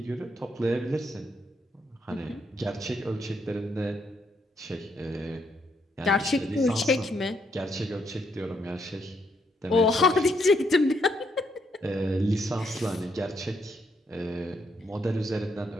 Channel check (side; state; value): both; normal; correlation 0.75